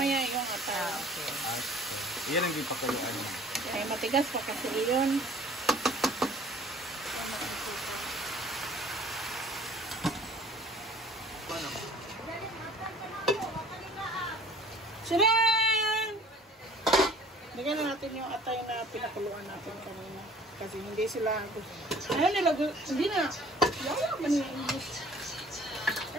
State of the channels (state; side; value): normal; both; correlation 0.50